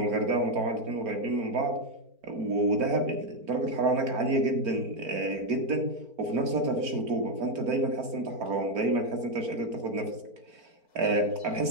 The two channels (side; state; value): left; late; 4.4 ms